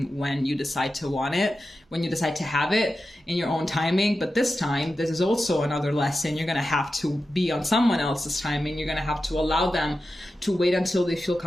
when you decide to want it, when you decide to have it in your own timing. But this time, this is also another lesson. You're gonna have to be on someone else's timing. You're gonna have to allow them to wait until they feel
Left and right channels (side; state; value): both; normal; correlation 0.92